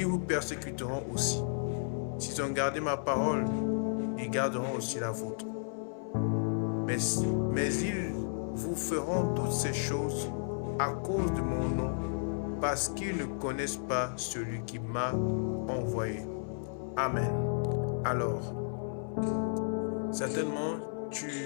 vous persécuteront aussi. S'ils ont gardé ma parole, ils garderont aussi la vôtre. Mais ils vous feront toutes ces choses à cause de mon nom, parce qu'ils ne connaissent pas celui qui m'a envoyé. Amen. Alors, certainement,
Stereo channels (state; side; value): silent; right; 56 dB below the other